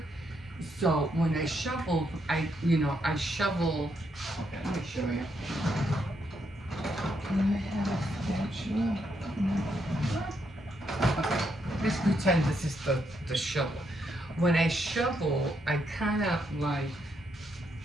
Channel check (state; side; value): normal; both; correlation 0.77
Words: So when I shovel, I shovel. Okay, let me show you. Can I have a spatula? Okay, let's pretend this is the shovel. When I shovel, I kind of like